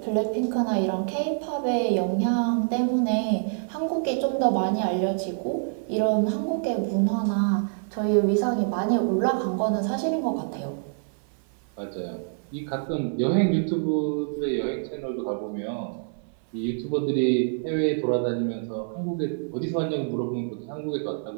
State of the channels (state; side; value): silent; left; 61 dB below the other